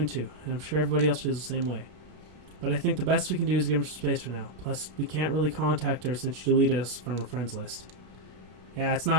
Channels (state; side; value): late; left; 32 ms